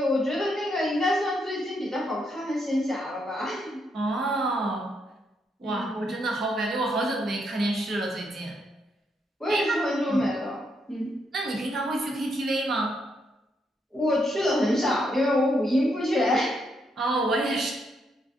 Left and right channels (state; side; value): normal; both; correlation 0.77